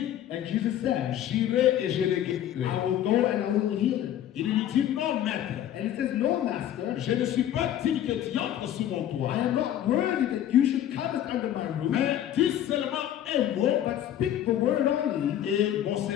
And Jesus said, j'irai et je le guérirai. I will go and I will heal him. Il lui dit, non maître, And he says, no, master, je ne suis pas digne que tu entres sous mon I toit. am not worthy that you should come under my roof, Mais dis seulement un mot but speak the word only, et mon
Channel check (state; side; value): quieter; right; 11.3 dB